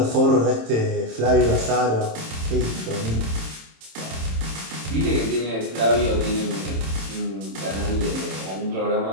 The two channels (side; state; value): left; late; 27 ms